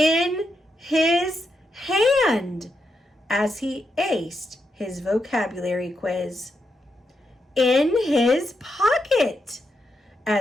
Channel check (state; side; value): normal; both; correlation 0.83